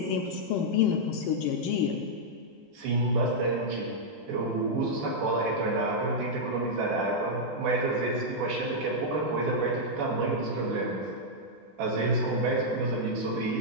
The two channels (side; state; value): both; normal; correlation -0.05